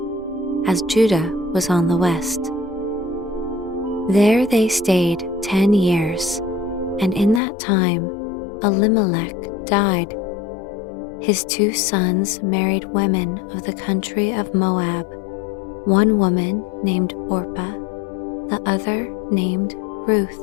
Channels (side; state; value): right; drops out; at 7.4 s